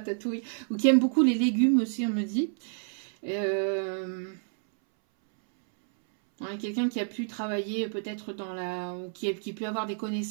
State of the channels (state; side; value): silent; left; 59 dB below the other